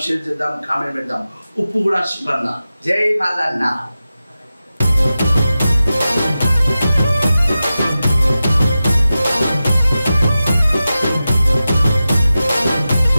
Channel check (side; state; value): both; inverted; correlation -0.93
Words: షేర్ చేద్దాం, కామెంట్ పెడదాం. ఉప్పు కూడా శివన్న. జై మల్లన్న.